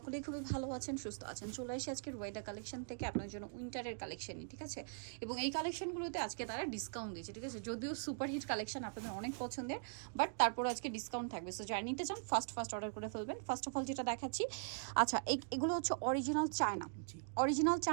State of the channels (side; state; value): left; silent; digital silence